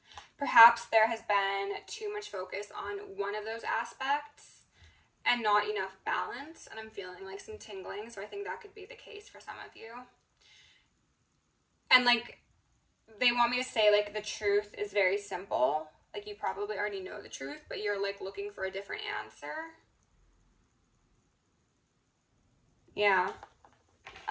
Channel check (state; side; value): identical; both; correlation 1.00